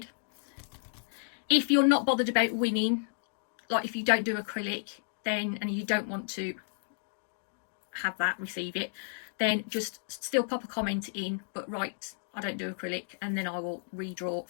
If you're not bothered about winning, like if you don't do acrylic, then, and you don't want to have that, receive it, then just still pop a comment in, but write, I don't do acrylic, and then I will redraw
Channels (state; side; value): silent; right; digital silence